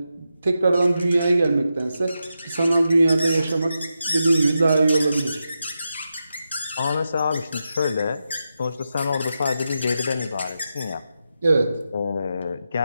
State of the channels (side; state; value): both; inverted; correlation -0.88